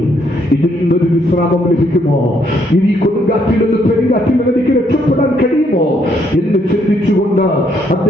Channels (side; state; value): both; normal; correlation 0.71